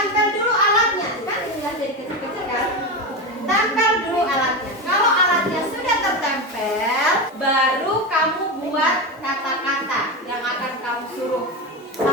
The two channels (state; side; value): normal; both; correlation 0.17